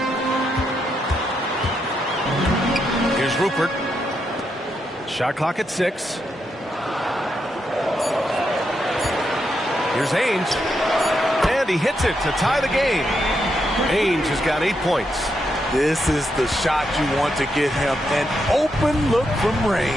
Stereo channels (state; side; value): normal; both; correlation 0.81